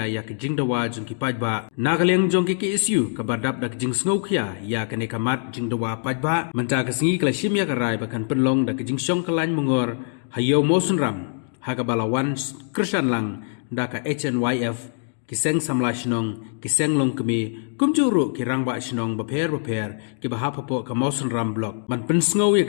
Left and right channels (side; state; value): right; silent; digital silence